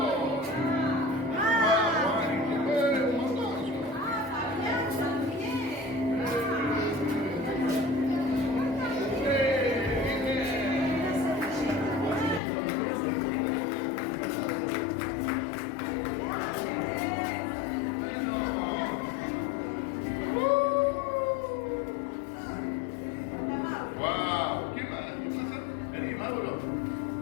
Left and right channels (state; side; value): drops out; right; at 12.4 s